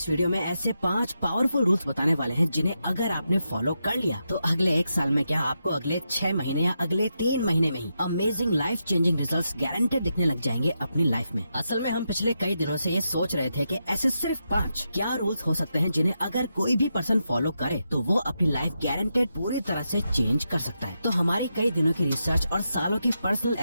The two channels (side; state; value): both; inverted; correlation -0.85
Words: वीडियो में ऐसे 5 पावरफुल रूल्स बताने वाले हैं जिन्हें अगर आपने फॉलो कर लिया तो अगले 1 साल में क्या आपको अगले 6 महीने या अगले 3 महीने में ही amazing life changing results guaranteed दिखने लग जाएंगे अपनी लाइफ में। असल में हम पिछले कई दिनों से ये सोच रहे थे कि ऐसे सिर्फ 5 क्या रूल्स हो सकते हैं जिन्हें अगर कोई भी पर्सन फॉलो करे तो वो अपनी लाइफ गारंटेड पूरी तरह से चेंज कर सकता है। तो हमारी कई दिनों की रिसर्च और सालों की पर्सनल